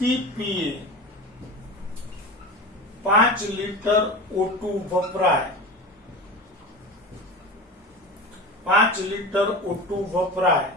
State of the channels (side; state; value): both; normal; correlation 0.29